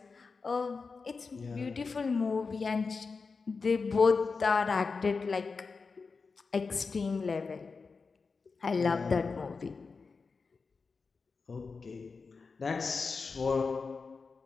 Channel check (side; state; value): right; quieter; 4.6 dB